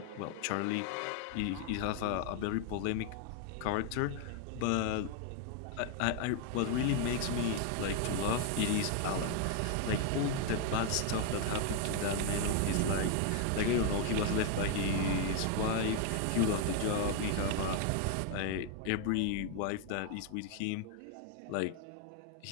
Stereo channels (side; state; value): both; different; correlation 0.01